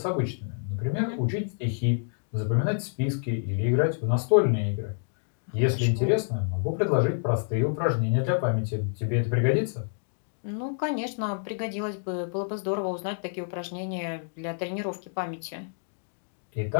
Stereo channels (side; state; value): right; silent; digital silence